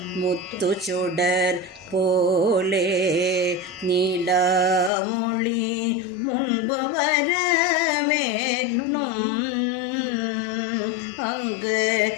முத்து சுடர் போலே நீலமொழி முன்பு வர வேணும் அங்கு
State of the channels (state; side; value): drops out; right; at 4.9 s